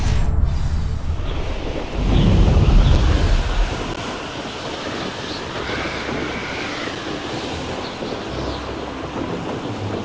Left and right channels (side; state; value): both; identical; correlation 1.00